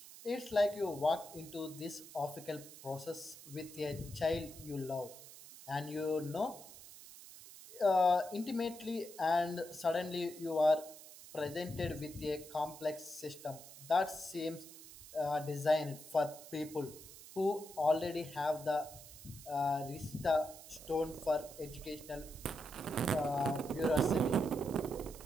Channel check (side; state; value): right; noise; hiss, 16 dB below the sound